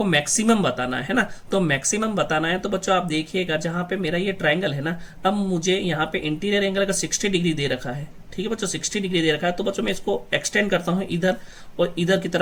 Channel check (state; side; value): identical; both; correlation 1.00